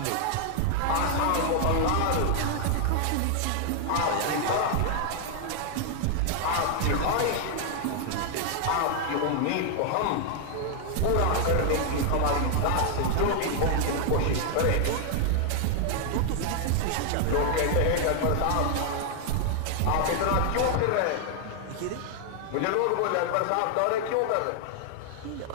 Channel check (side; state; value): both; different; correlation 0.00